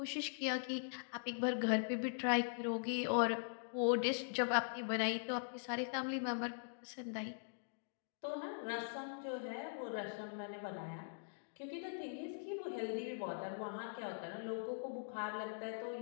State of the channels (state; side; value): silent; right; digital silence